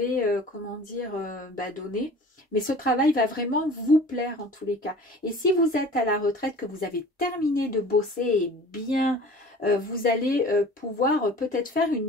comment dire, donner. Mais ce travail va vraiment vous plaire en tous les cas. Et si vous êtes à la retraite, que vous avez terminé de bosser et bien, vous allez pouvoir peut-être faire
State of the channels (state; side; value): normal; both; correlation 0.43